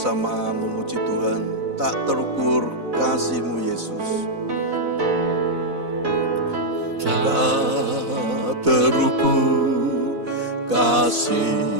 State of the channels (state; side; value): late; left; 4.0 ms